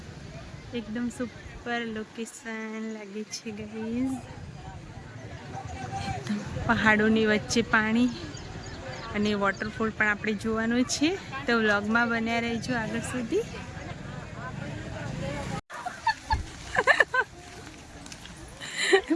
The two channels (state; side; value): identical; both; correlation 1.00